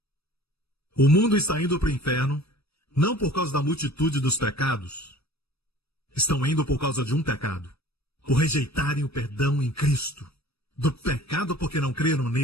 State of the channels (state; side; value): late; right; 0.78 ms